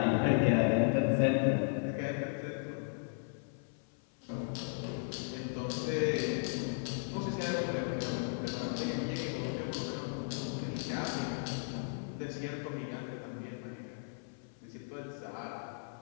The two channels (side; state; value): right; silent; 54 dB below the other